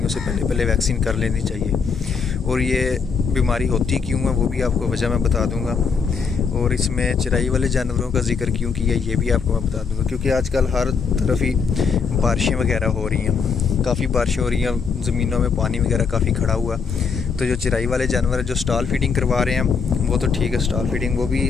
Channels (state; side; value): quieter; right; 5.6 dB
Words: سے پہلے ویکسین کر لینی چاہیے۔ اور یہ بیماری ہوتی کیوں ہے وہ بھی آپ کو وجہ میں بتا دوں گا، اور اس میں چرائی والے جانوروں کا ذکر کیوں کیا یہ بھی آپ کو میں بتا دوں گا، کیونکہ آج کل ہر طرف ہی بارشیں وغیرہ ہو رہی ہیں، کافی بارشیں ہو رہی ہیں، زمینوں میں پانی وغیرہ کافی کھڑا ہوا۔ تو جو چرائی والے جانور جو سٹال فیڈنگ کروا رہے ہیں وہ تو ٹھیک ہے، سٹال فیڈنگ وہ بھی